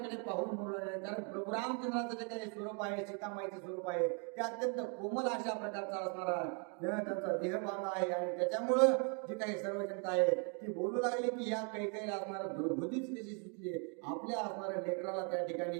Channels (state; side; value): quieter; left; 38.6 dB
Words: पाहून बोलू लागले. कारण प्रभू रामचंद्राचं जे काही स्वरूप आहे सीतामाईचं स्वरूप आहे ते अत्यंत कोमल अशा प्रकारचा असणारा त्यांचा देहभाग आहे आणि त्याच्यामुळं जी काही सर्व जनता आहे ती बोलू लागली की या काही असणारं दुर्बुद्धीच कशी सुचली आपल्या असणाऱ्या लेकराला त्या ठिकाणी